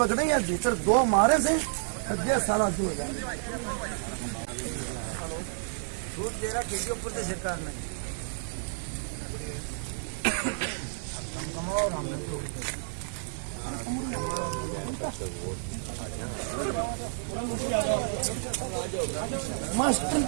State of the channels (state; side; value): silent; left; digital silence